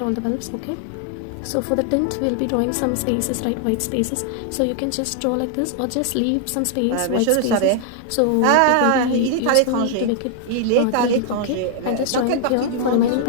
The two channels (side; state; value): both; different; correlation 0.00